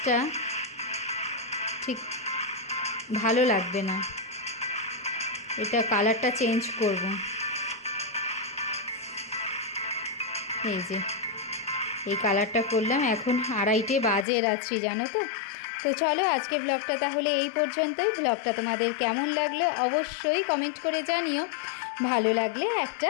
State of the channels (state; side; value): drops out; right; at 14.2 s